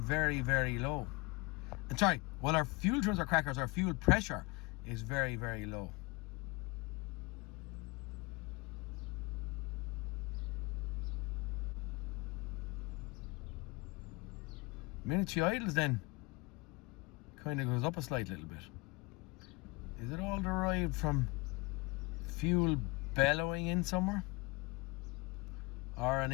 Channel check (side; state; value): right; quieter; 25.5 dB